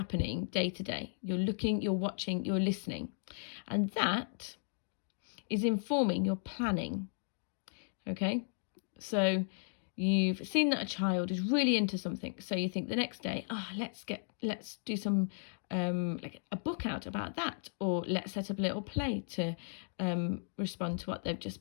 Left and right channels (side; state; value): right; silent; digital silence